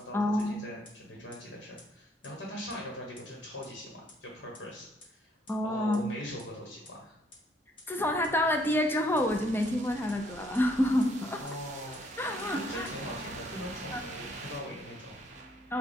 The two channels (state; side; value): normal; both; correlation 0.67